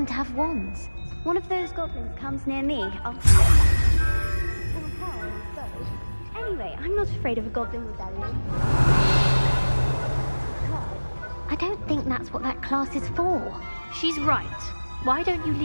to have wands. One of those goblins comes near me, I'll... Anyway, I'm not afraid of a goblin rebellion. I don't think that's what that class is for. She's right. Why don't you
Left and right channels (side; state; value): both; inverted; correlation -1.00